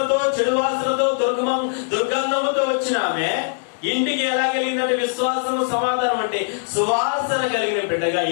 చెడు వాసనతో, దుర్గంధముతో వచ్చిన ఆమె ఇంటికి ఎలా కలిగిందంటే విశ్వాసం, సమాధానం అంటే సువాసన కలిగిన బిడ్డగా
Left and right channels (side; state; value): right; silent; 65 dB below the other